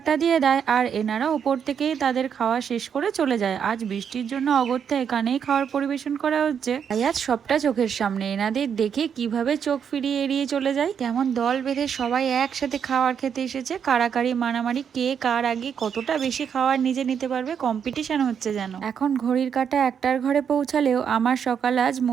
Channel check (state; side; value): quieter; left; 7.6 dB